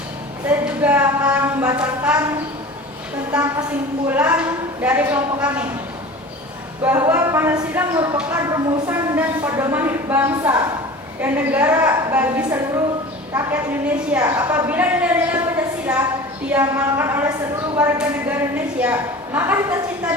Saya juga akan membacakan tentang kesimpulan dari kelompok kami, bahwa Pancasila merupakan rumusan dan pedoman hidup bangsa dan negara bagi seluruh rakyat Indonesia. Apabila nilai-nilai Pancasila diamalkan oleh seluruh warga negara Indonesia, maka cita-cita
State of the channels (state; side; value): normal; both; correlation 0.37